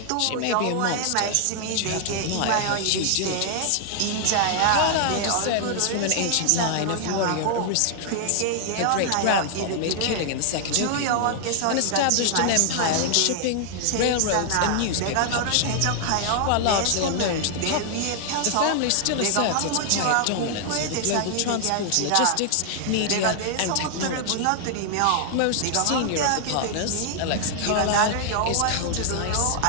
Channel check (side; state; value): both; different; correlation 0.00